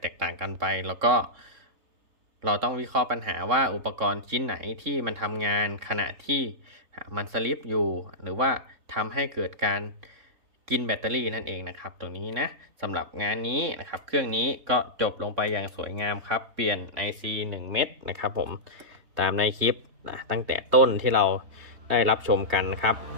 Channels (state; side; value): late; left; 3.7 ms